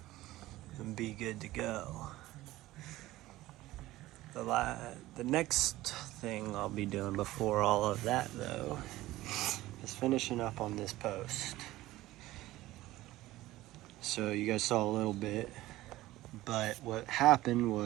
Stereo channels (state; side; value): quieter; left; 16.8 dB